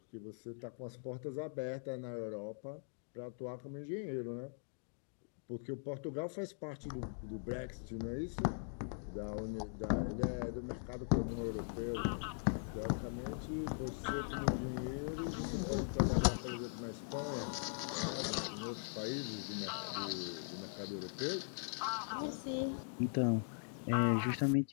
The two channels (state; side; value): silent; right; digital silence